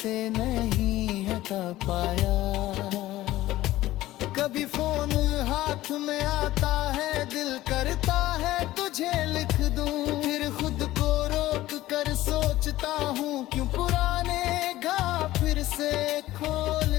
नहीं हटा पाया। कभी फोन हाथ में आता है, दिल करता है तुझे लिख दूं, फिर खुद को रोक कर सोचता हूँ क्यों पुराने घा फिर से खोल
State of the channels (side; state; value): right; quieter; 16.0 dB